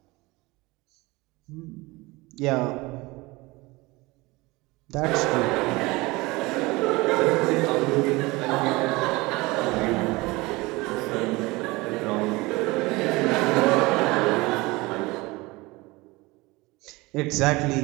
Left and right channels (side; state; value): left; quieter; 22.5 dB